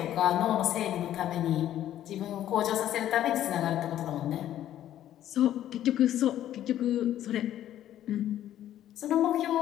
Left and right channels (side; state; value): right; quieter; 12.0 dB